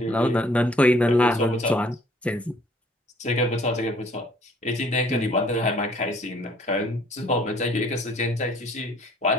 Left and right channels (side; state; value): both; normal; correlation 0.58